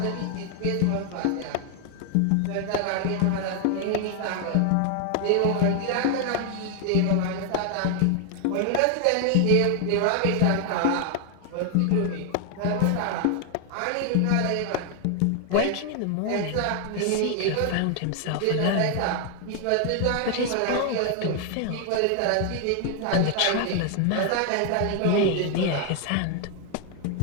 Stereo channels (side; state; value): both; different; correlation 0.00